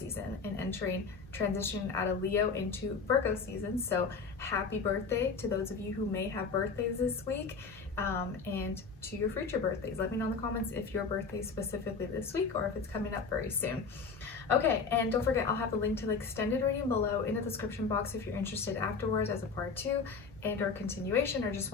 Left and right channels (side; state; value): right; quieter; 4.9 dB